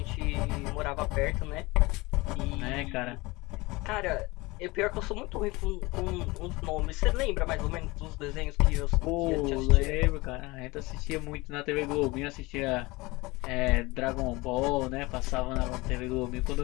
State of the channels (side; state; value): right; quieter; 22.8 dB